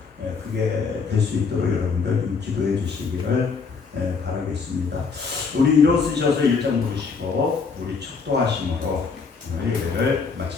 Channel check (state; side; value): quieter; right; 5.1 dB